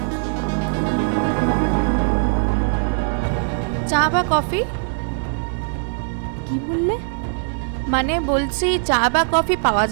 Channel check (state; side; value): silent; left; 65 dB below the other